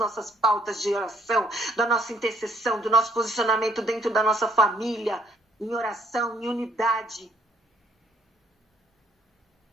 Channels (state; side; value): normal; both; correlation 0.66